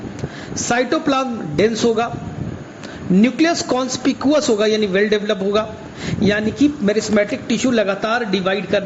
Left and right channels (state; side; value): identical; both; correlation 1.00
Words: साइटोप्लाज्म डेंस होगा, न्यूक्लियस कॉन्स्पिकुअस होगा यानी वेल डेवलप होगा। यानी कि मेरिस्टेमेटिक टिश्यू लगातार डिवाइड